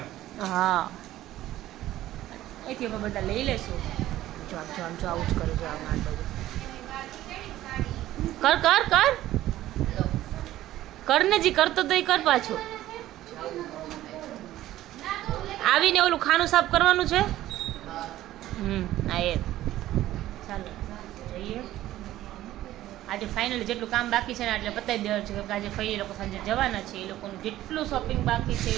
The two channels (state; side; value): quieter; left; 14.4 dB